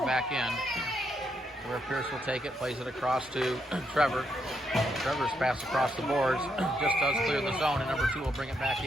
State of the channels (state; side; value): normal; both; correlation 0.78